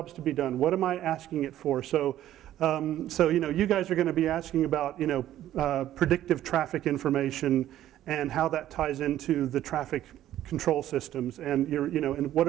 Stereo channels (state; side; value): quieter; left; 12.6 dB